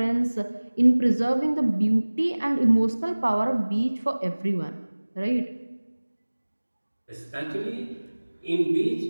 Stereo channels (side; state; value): both; inverted; correlation -1.00